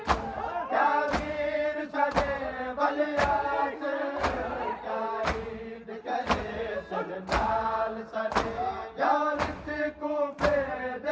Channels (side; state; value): both; identical; correlation 1.00